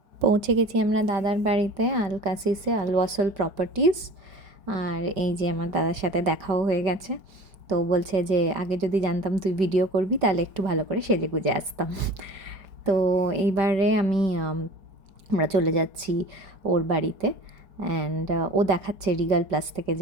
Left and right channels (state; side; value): late; left; 5.2 ms